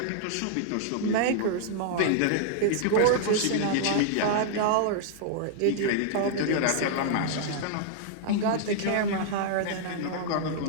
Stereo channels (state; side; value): different; both; correlation -0.01